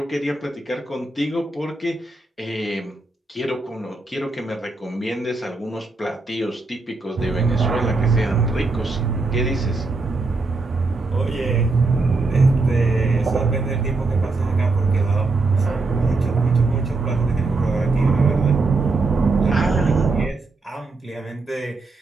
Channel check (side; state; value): left; quieter; 3.5 dB